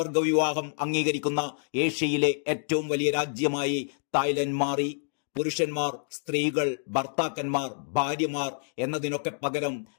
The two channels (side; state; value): right; silent; digital silence